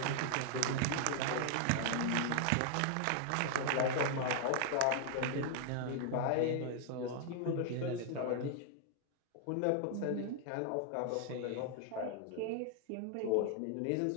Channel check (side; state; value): both; different; correlation 0.00